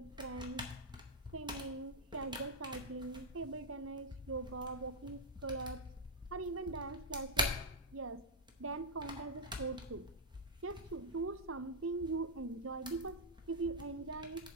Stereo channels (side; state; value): both; normal; correlation -0.03